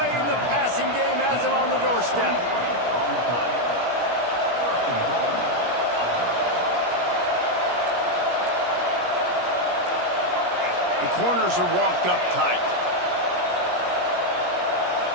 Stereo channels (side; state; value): left; late; 17 ms